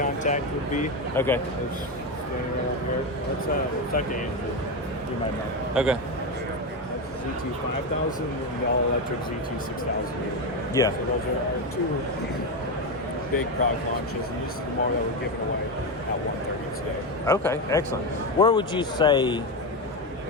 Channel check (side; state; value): both; normal; correlation 0.13